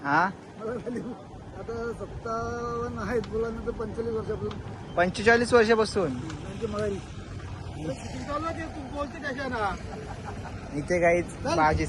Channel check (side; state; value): both; identical; correlation 1.00